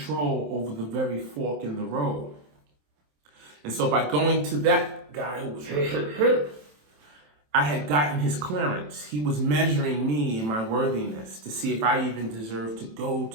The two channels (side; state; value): left; late; 27 ms